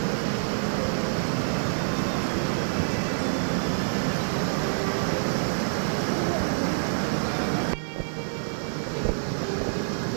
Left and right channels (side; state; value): left; silent; 60 dB below the other